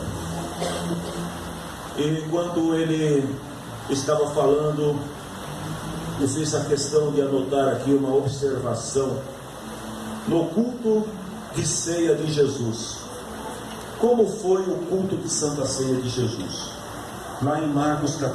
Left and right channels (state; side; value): identical; both; correlation 1.00